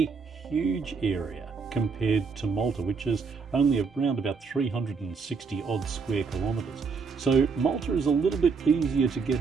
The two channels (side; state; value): left; quieter; 5.2 dB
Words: huge area compared to Malta, which is only around about 360 odd square kilometres. So Malta is a little bit easier to